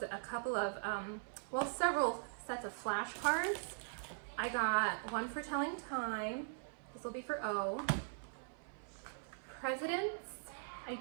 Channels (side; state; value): left; silent; 50 dB below the other